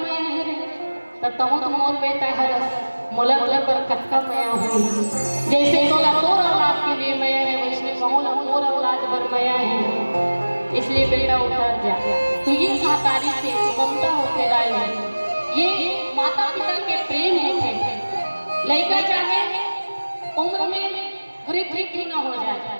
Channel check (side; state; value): both; inverted; correlation -1.00